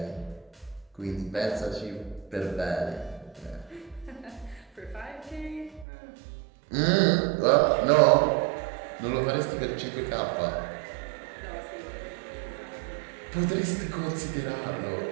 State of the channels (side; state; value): left; drops out; at 5.9 s